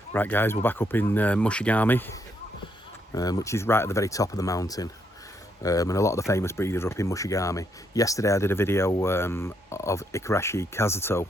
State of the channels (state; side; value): normal; both; correlation 0.75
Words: Right, guys, we're back up in Mushigame, which is right at the very top of the mountain. And a lot of the famous breeders are up in Mushigame. Yesterday I did a video of Igarashi Kazuto,